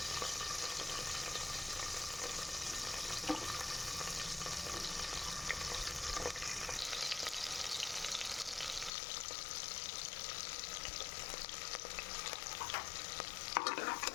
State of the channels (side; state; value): right; drops out; at 8.9 s